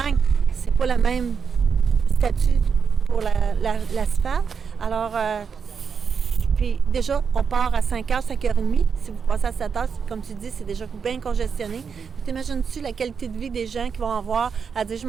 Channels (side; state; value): left; quieter; 6.2 dB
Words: c'est pas le même statut pour l'asphalte. Alors, puis déjà, on part à 5h, 5h30. Si vous passez à 7h, comme tu dis, c'est déjà bien congestionné. T'imagines-tu la qualité de vie des gens qui vont avoir à dire « je